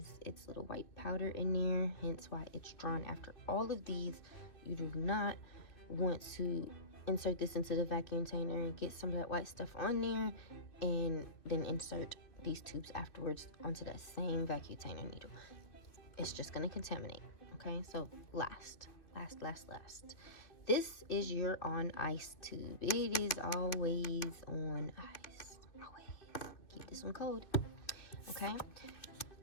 its little white powder in there, hence why it's drawn after all of these. You do not want to insert this into the vacuum container and get some of that white stuff on there and then insert these tubes afterwards onto that same vacuum container needle. It's just going to contaminate, okay? So last. This is your on ice tube. It is always on ice. Always. Keep this one cold. Okay?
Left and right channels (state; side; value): late; right; 2.7 ms